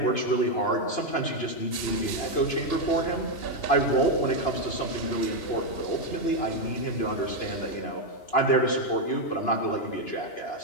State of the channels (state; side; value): late; right; 2.9 ms